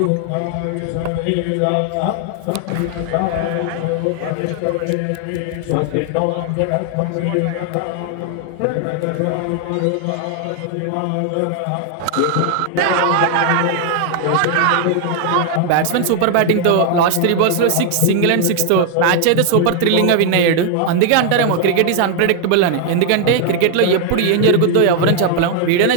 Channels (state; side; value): different; both; correlation 0.00